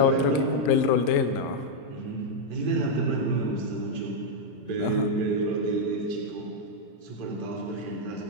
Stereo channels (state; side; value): late; right; 34 ms